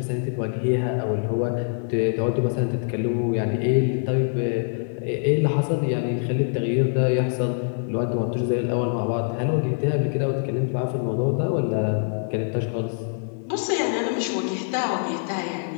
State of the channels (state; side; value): silent; right; 62 dB below the other